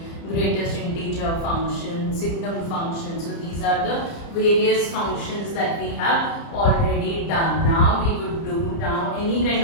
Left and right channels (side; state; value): right; late; 30 ms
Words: greatest integer function, signum function. So these are the various functions that we have already done. Now we would do any kind